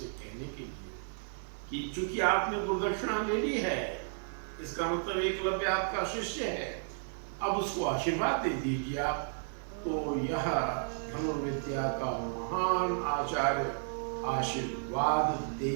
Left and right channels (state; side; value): silent; left; 56 dB below the other